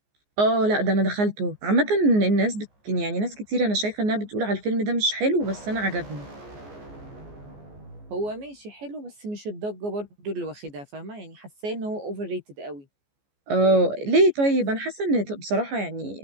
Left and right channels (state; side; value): late; left; 14 ms